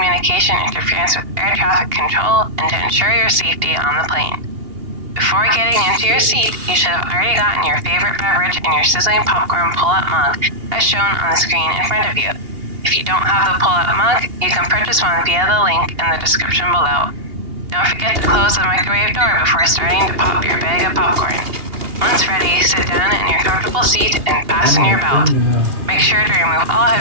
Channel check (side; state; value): left; late; 2.8 ms